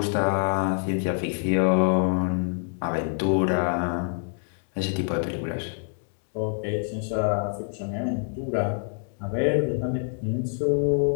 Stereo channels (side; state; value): right; silent; 61 dB below the other